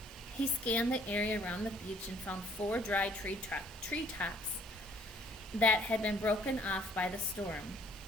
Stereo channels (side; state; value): both; normal; correlation 0.61